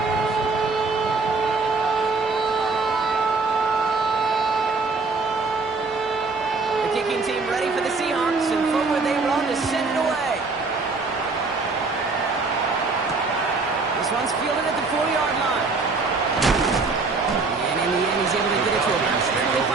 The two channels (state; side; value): quieter; left; 4.0 dB